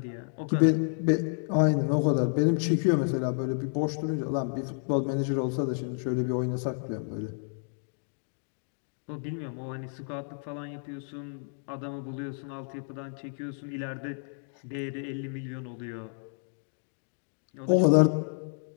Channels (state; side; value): silent; right; 58 dB below the other